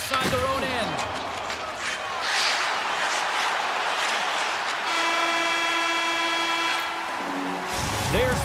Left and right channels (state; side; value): identical; both; correlation 1.00